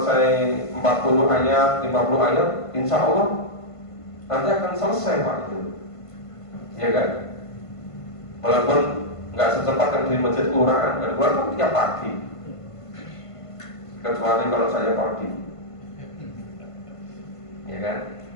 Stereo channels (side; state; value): right; late; 1.5 ms